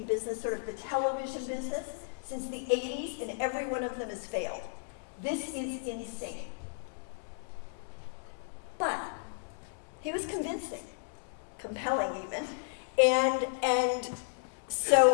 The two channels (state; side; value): silent; right; 55 dB below the other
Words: business, sort of the television business, since the 80s, and every one of them has failed. This is insane. But he was convincing, compelling even, and